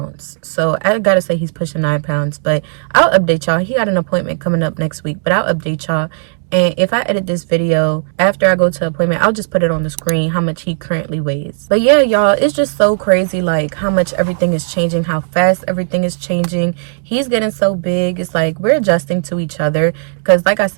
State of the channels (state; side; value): silent; left; digital silence